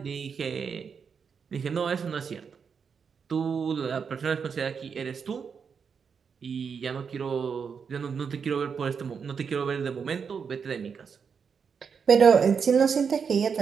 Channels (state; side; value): quieter; left; 6.3 dB